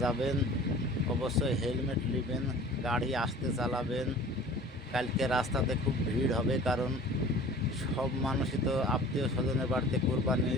যাবেন, অবশ্যই হেলমেট নেবেন, গাড়ি আস্তে চালাবেন। কালকে রাস্তাতে খুব ভিড় হবে, কারণ সব মানুষই তো আত্মীয় স্বজনের বাড়িতে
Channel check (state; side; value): normal; both; correlation 0.44